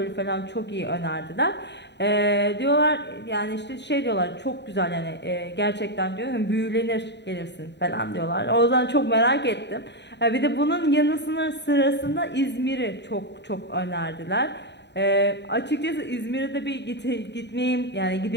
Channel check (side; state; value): right; late; 0.50 ms